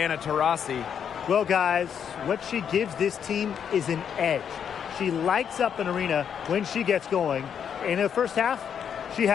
Taurasi. Well, guys, what she gives this team is an edge. She lights up an arena when she gets going. In the first half, she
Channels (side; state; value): right; quieter; 8.0 dB